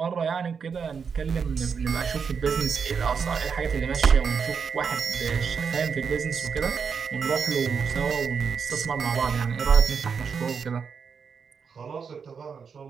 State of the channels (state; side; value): quieter; left; 6.1 dB